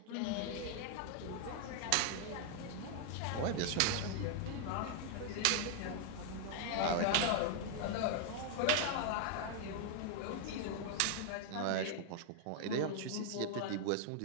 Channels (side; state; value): both; different; correlation 0.00